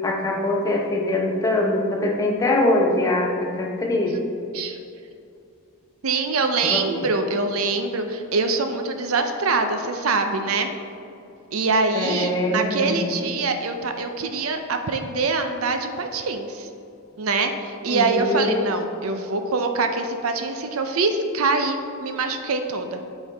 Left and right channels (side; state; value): both; normal; correlation 0.05